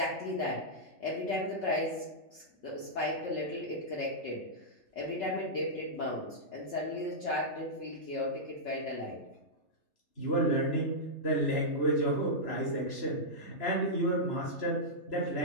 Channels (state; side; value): late; right; 3.3 ms